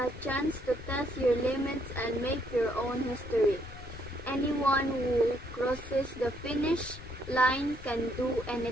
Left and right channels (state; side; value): noise; left; rumble, 15 dB below the sound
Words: chance to test your limits and make your own history. Anyone who crosses the finish line can do